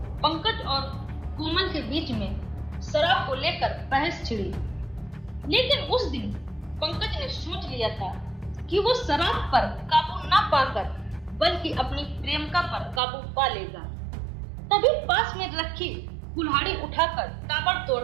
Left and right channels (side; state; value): left; drops out; at 13.0 s